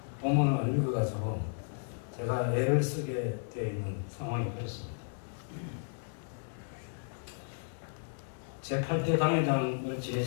본문을 안 읽어가지고 제가 애를 쓰게 되어 있는 상황이 그렇습니다. 제8대 당회장을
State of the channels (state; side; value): silent; right; digital silence